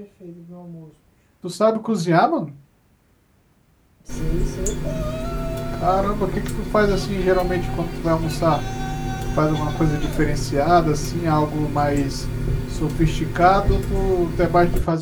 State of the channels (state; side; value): identical; both; correlation 1.00